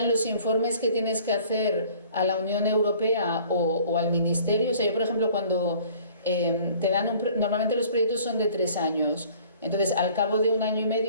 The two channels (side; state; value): both; inverted; correlation -0.53